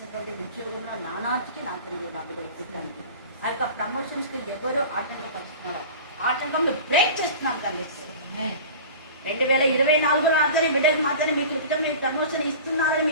ఉద్యోగంలో నానాటికి నా తండ్రి బాబుగా ఇచ్చేదానికి ఆ యొక్క ప్రమోషన్స్కి ఎవరో ఆటంకం పడుతున్నారు. ఆటంకం బ్రేక్ చేస్తున్నాం తండ్రి. 2024 రాత్రి బిడ్డకు మాత్రమే మీకు క్రితం మీకు ప్రమోషన్ ఇస్తున్నారని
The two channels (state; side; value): inverted; both; correlation -0.37